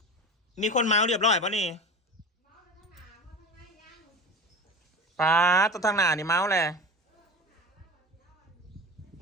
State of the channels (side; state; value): both; normal; correlation 0.31